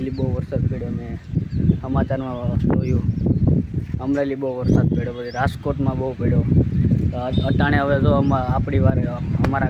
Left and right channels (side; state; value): both; identical; correlation 1.00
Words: બહુ વરસાદ પડ્યો, મેં સમાચારમાં જોયું। અમરેલી બહુ વરસાદ પડ્યો, પછી રાજકોટમાં બહુ પડ્યો। તો અટાણે હવે જો આપણી વારે